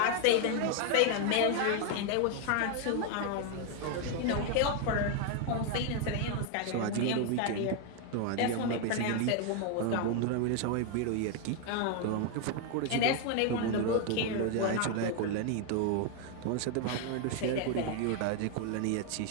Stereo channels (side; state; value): both; different; correlation 0.01